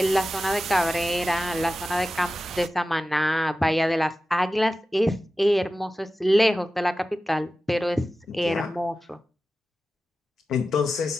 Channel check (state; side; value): normal; both; correlation 0.94